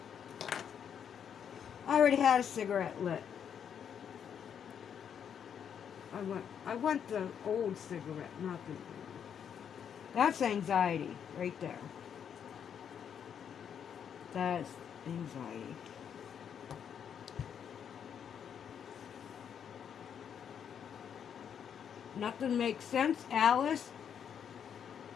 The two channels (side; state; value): right; quieter; 8.1 dB